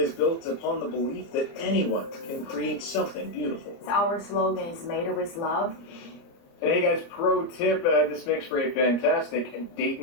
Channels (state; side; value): late; right; 30 ms